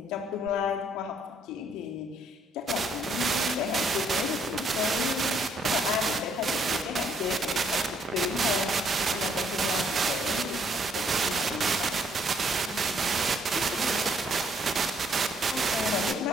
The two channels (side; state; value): both; normal; correlation 0.68